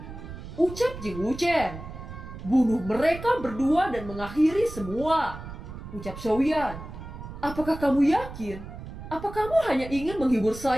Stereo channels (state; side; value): noise; right; rumble, 12 dB below the sound